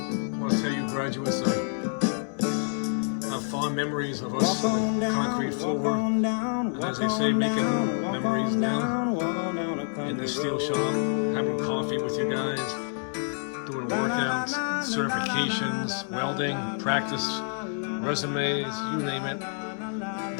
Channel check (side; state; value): right; silent; 60 dB below the other